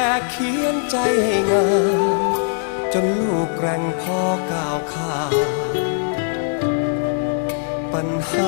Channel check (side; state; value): right; silent; digital silence